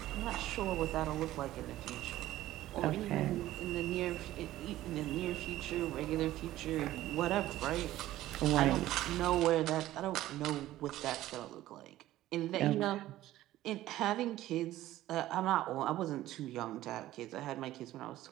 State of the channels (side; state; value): left; quieter; 14.8 dB